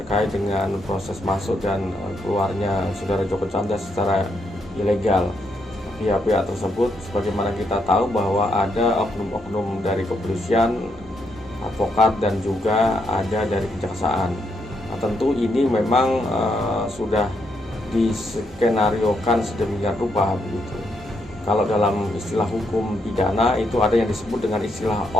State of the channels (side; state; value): both; normal; correlation 0.78